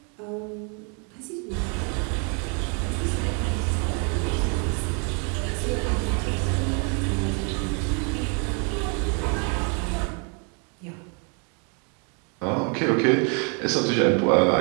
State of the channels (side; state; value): left; quieter; 37.4 dB